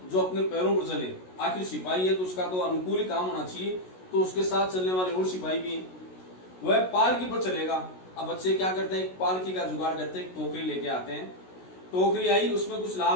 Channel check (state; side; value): late; right; 16 ms